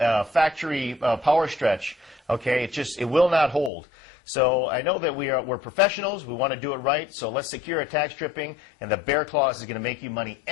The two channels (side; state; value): right; drops out; at 3.7 s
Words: factory power stretch. Okay, it will not hold. So I know that we're professionals. We want to do it right. So let's secure a tack stripping, and the Behr Claws is going to make you money